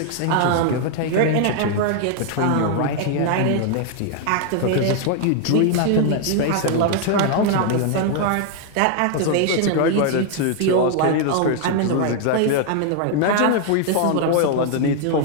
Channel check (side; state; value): both; different; correlation 0.00